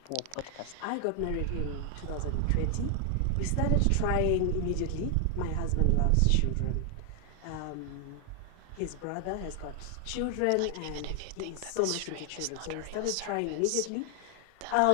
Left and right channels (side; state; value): both; different; correlation 0.00